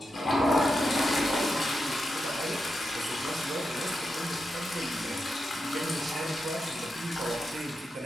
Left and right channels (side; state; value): both; normal; correlation 0.87